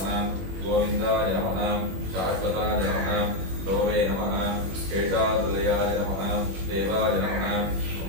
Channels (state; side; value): late; left; 21 ms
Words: गोविन्दाय नमः शाश्वताय नमः लोवे नमः शेषाद्रयाय नमः देवाय नमः